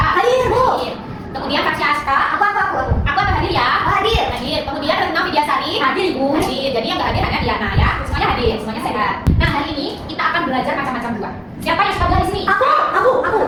Hadir, Bu. Kemudian Fasya Aska. Aku. Aku akan hadir ya. Hadir. Hadir. Kemudian Retno Vidyasari. Hadir, Ibu. Hadir. Jadi yang nggak hadir hanya Diana ya. Semuanya hadir, semuanya sehat. Nah, hari ini kita akan belajar macam-macam buah. Siapa yang suka buah di sini? Aku.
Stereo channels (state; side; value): identical; both; correlation 1.00